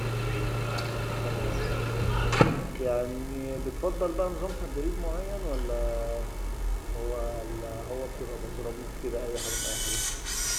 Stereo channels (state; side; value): identical; both; correlation 1.00